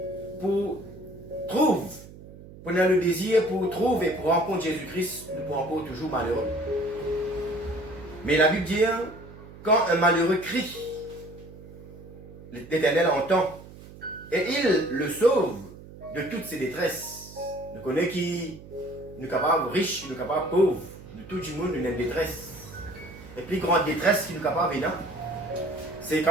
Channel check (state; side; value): noise; right; hum, 17 dB below the sound